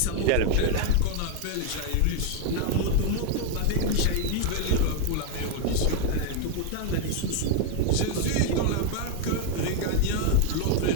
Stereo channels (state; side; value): different; both; correlation 0.01